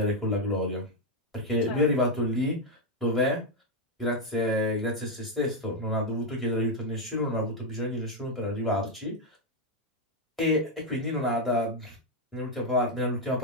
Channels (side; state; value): both; normal; correlation 0.02